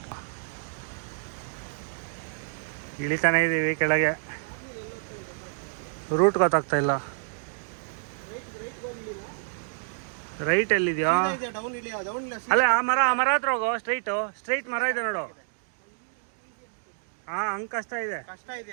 ಇಳಿತಾನೆ ಇದ್ದೀವಿ ಕೆಳಗೆ. ರೂಟ್ ಗೊತ್ತಾಗ್ತಾ ಇಲ್ಲ. ರೈಟ್ ಎಲ್ಲಿದೆಯಾ? ಅಲ್ಲೇ ಆ ಮರ ಹತ್ರ ಹೋಗೋ. ಸ್ಟ್ರೈಟ್ ಮರ ಇದೆ ನೋಡು. ಹಾ, ಹಂಗೆ ಕಷ್ಟ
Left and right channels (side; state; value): left; silent; digital silence